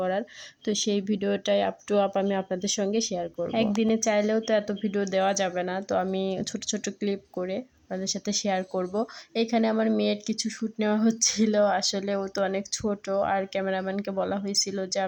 তো সেই ভিডিওটাই আপ টু আপ আমি আপনাদের সঙ্গে শেয়ার করব। একদিনে চাইলেও তো এত ভিডিও দেওয়া যাবে না, তো আমি ছোট ছোট ক্লিপ করে আপনাদের সাথে শেয়ার করব। এখানে আমার মেয়ের কিছু শ্যুট নেওয়া হচ্ছিল। আসলে ও তো অনেক ছোট, আর ক্যামেরাম্যানকে বলা হয়েছিল যে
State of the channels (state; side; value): identical; both; correlation 1.00